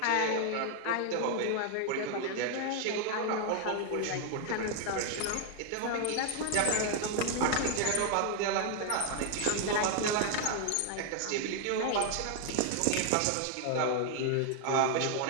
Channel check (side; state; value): both; different; correlation 0.00